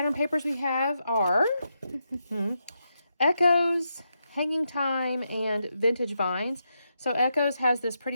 papers we have are Echoes, Hanging Time, and Vintage Vines. So Echoes has this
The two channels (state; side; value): inverted; both; correlation -0.84